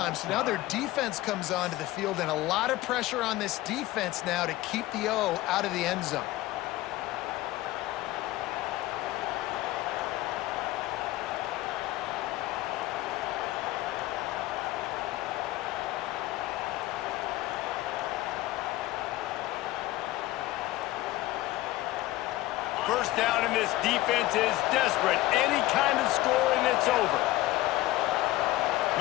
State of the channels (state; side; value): quieter; right; 17.2 dB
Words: so now their defense comes onto the field, and a lot of pressure on this defense now to keep the O out of the end zone. First down, and this defense is desperate. Any kind of score, and it's over.